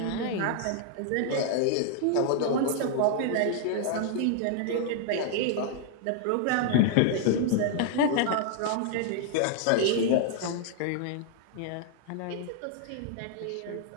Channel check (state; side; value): different; both; correlation 0.00